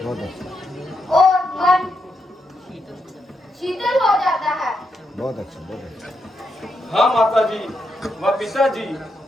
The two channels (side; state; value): both; normal; correlation 0.82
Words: अच्छा, और मन शीतल हो जाता है। बहुत अच्छा, बहुत अच्छा। हाँ माता जी व पिताजी,